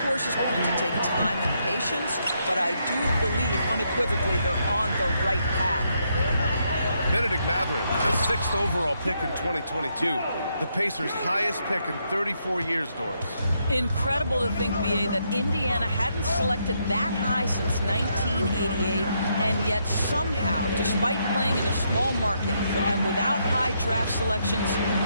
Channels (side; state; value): both; inverted; correlation -0.77